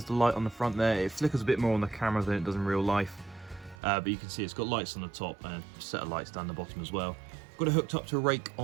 the light on the front there. It flickers a bit more on the camera than it does in real life, but you can see it's got lights on the top and a set of lights down the bottom as well. Got it hooked up to a rake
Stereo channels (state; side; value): drops out; left; at 3.8 s